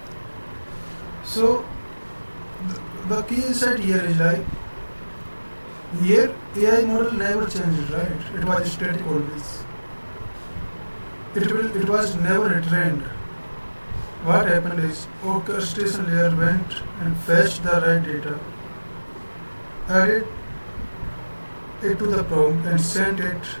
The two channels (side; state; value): both; inverted; correlation -1.00